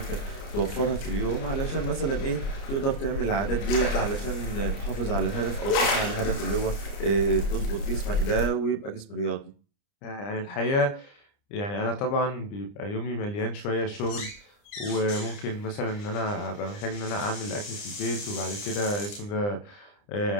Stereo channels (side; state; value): right; late; 29 ms